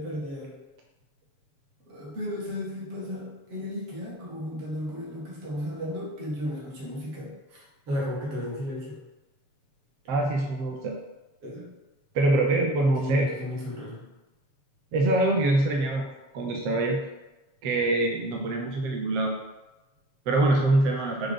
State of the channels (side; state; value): left; late; 7.1 ms